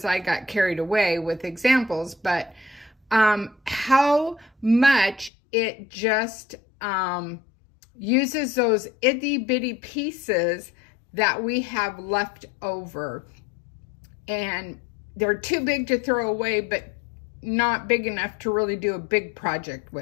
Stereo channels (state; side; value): drops out; right; at 5.3 s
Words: I got carried away with examples, but how much it just uses those itty bitty pieces that we have left over, and they're too big to throw away but not big enough to really do a big project